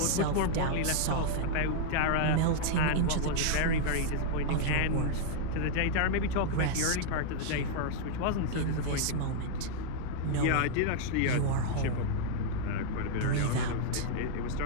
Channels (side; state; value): both; different; correlation -0.01